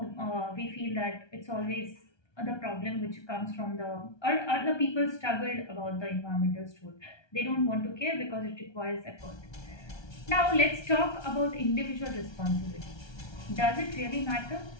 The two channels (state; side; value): late; right; 1.3 ms